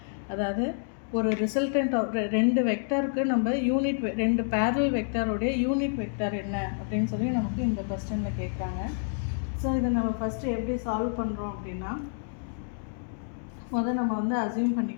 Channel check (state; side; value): silent; right; digital silence